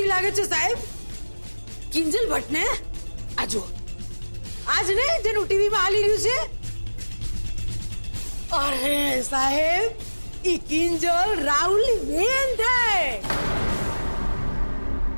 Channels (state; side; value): inverted; both; correlation -1.00